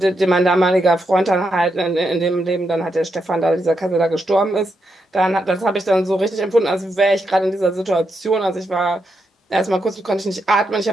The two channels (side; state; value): both; normal; correlation 0.83